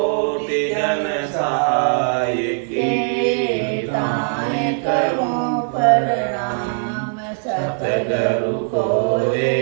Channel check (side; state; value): left; silent; digital silence